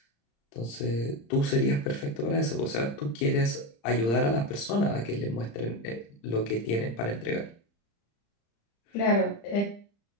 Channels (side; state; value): right; late; 35 ms